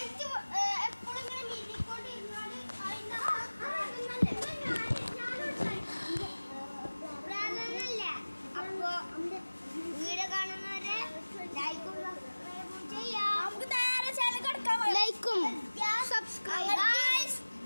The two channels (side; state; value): both; inverted; correlation -1.00